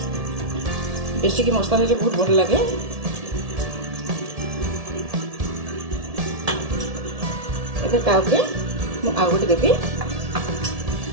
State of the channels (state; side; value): late; left; 1.7 ms